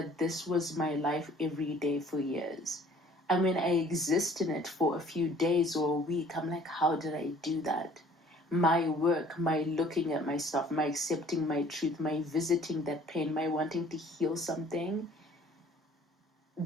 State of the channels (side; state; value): both; normal; correlation 0.54